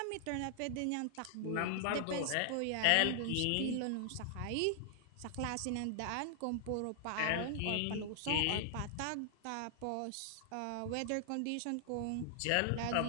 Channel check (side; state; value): both; different; correlation 0.00